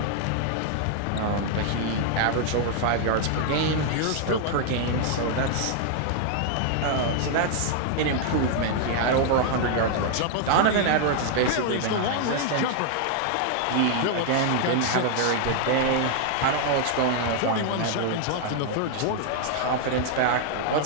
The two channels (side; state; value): both; different; correlation 0.00